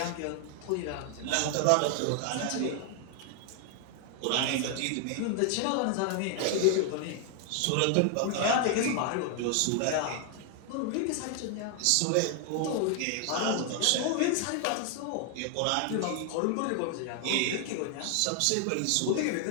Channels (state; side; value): different; both; correlation 0.00